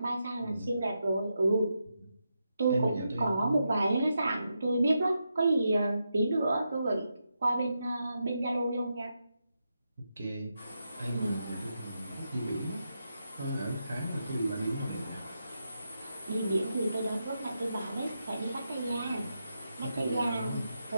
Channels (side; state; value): both; inverted; correlation -0.85